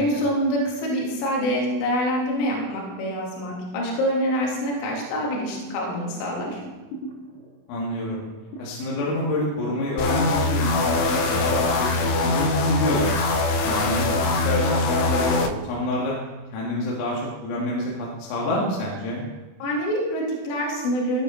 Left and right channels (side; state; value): right; late; 28 ms